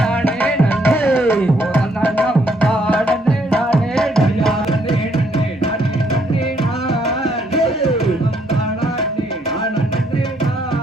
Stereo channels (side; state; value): both; normal; correlation 0.70